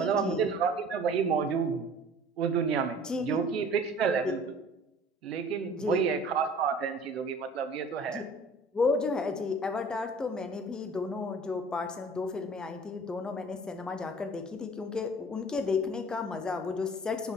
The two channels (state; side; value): normal; both; correlation 0.47